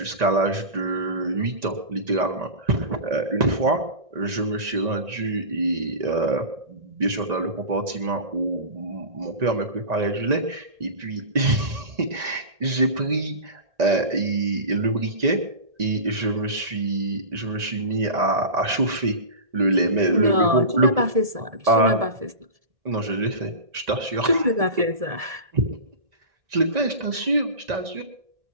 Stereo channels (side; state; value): left; late; 1.9 ms